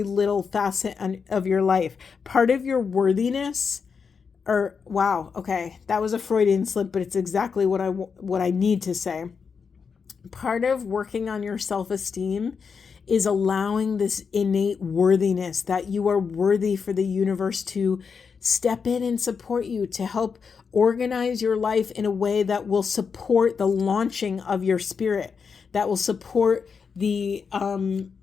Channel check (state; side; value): quieter; right; 5.8 dB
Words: little facet of your life. Part of your worthiness, wow, okay, that was a Freudian slip, but it's exactly what I need to say. Part of working on your self-esteem is allowing this innate worthiness, that you are worthy for the universe to step in and support you, to help organize your life in a way that will support the launching of your spirit, that will support the